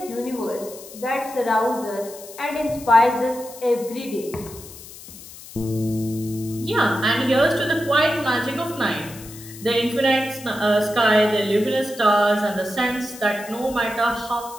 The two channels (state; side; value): noise; left; hiss, 16 dB below the sound